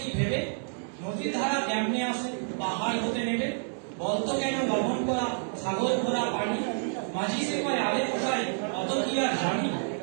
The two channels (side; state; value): left; silent; 59 dB below the other